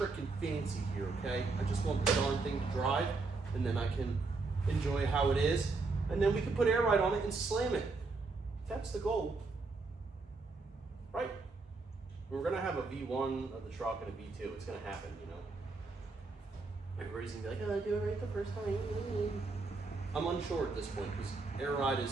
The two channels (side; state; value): left; quieter; 3.9 dB